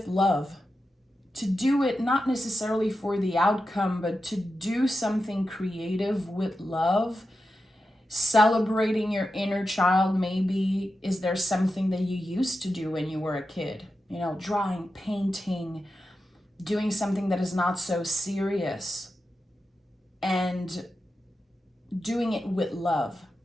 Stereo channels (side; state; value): both; normal; correlation 0.90